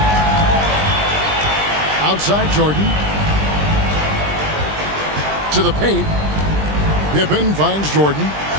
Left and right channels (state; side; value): late; left; 20 ms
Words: Outside Jordan. To the paint. Pippen finds Jordan.